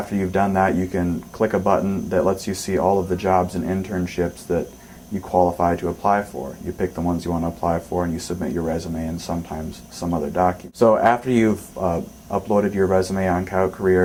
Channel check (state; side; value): identical; both; correlation 1.00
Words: you've done that, you can click a button that lets you see all of the jobs and internships that you qualify to apply for. You pick the ones you want to apply for and you submit your resume and sometimes some other document. So after you've uploaded your resume on Coyote